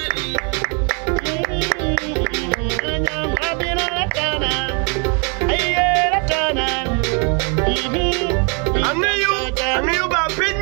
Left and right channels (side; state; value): left; quieter; 35.9 dB